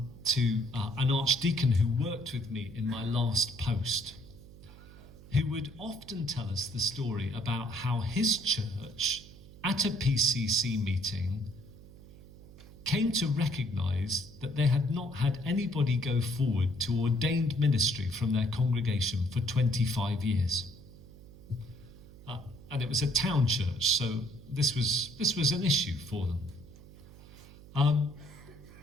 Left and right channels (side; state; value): right; noise; hum, 19 dB below the sound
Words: an archdeacon who worked with me in my last post, who would often tell us the story about how his church, at a PCC meeting, came to recognise that they had not had anybody go forward to ordained ministry from their congregation for 25 years. And it was a town church, so this was an issue for them.